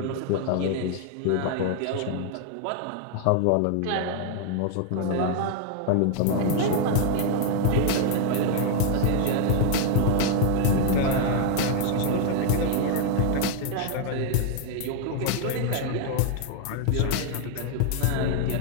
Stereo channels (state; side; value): different; both; correlation 0.00